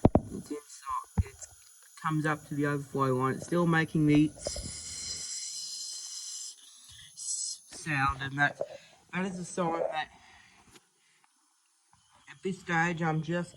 It's inside. It comes up to the overflow line. It's still making the sound, and that is a sign that at this stage I'm just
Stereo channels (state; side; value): identical; both; correlation 1.00